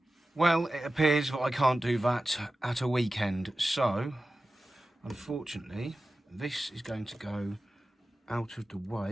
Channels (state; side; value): normal; both; correlation 0.94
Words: Well, it appears that I can't do that at a weekend, so unfortunately this is going to go out of the